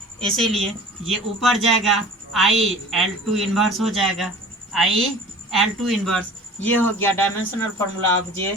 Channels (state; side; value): normal; both; correlation 0.43